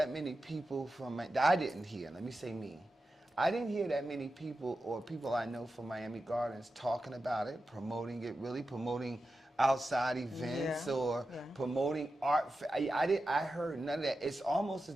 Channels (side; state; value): both; normal; correlation 0.91